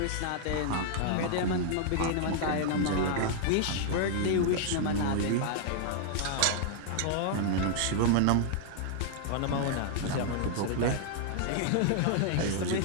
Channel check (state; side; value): different; both; correlation -0.01